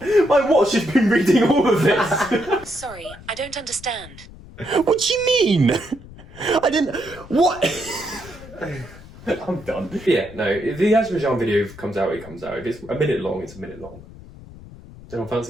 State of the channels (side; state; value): left; noise; rumble, 18 dB below the sound